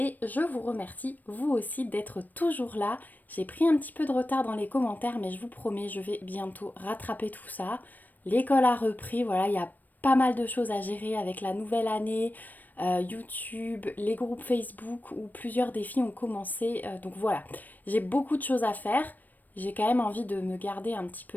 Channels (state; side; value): late; right; 0.086 ms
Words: je vous remercie, vous aussi, d'être toujours là. J'ai pris un petit peu de retard dans les commentaires, mais je vous promets, je vais bientôt rattraper tout ça. L'école a repris, voilà, il y a pas mal de choses à gérer avec la nouvelle année, YouTube, les groupes Facebook où plusieurs défis ont commencé. Donc voilà, j'ai beaucoup de choses à faire. J'ai quand même envie de me garder un petit